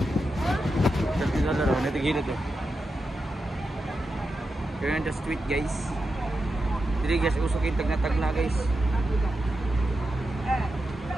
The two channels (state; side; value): normal; both; correlation 0.89